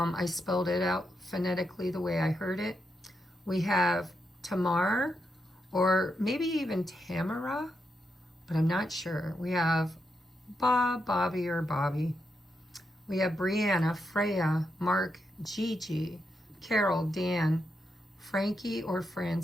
spelled it out phonetically the way I heard it. We have Tamar, or maybe even Tamara, but I'm not sure. We have Bob, Bobby, or Bobby. We have Brianna, Freya, Mark, Gigi, Carol, Dan, Frankie or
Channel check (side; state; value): both; normal; correlation 0.83